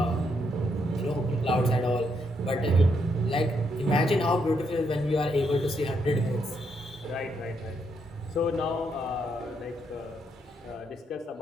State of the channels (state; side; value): normal; both; correlation 0.77